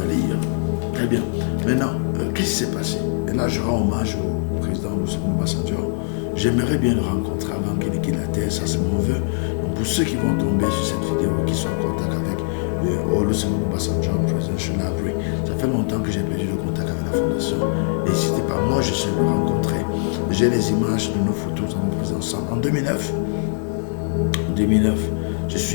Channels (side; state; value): right; silent; digital silence